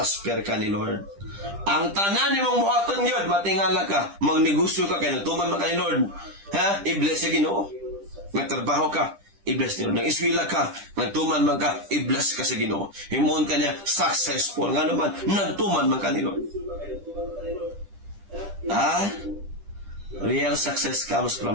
ka ni Lord. Ang tanan ni mong buhaton yun, matingala ka, magnegosyo ka, kaya nagtuman man ka ni Lord. I-bless sa Ginoo. Nagtrabaho ka, i-bless ni Lord. Nag-iswila ka, nagtuman man ka, i-bless ka sa Ginoo. Himuon ka niya, successful. Nga naman, nagtuman man ka ni Lord. Real success comes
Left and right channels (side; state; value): left; late; 10 ms